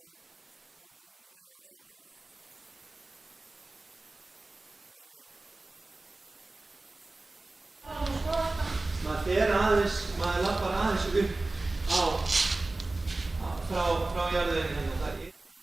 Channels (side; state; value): left; quieter; 3.1 dB